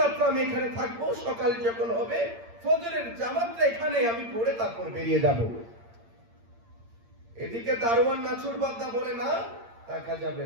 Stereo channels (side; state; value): left; late; 8.7 ms